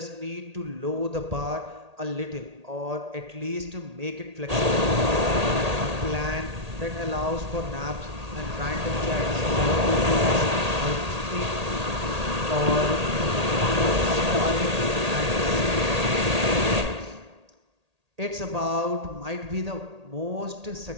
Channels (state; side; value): late; left; 1.8 ms